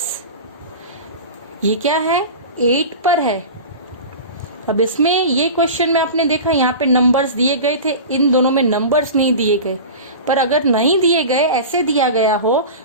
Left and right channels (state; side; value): inverted; both; correlation -0.31